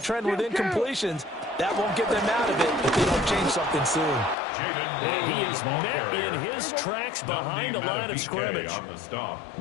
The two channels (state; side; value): drops out; right; at 4.4 s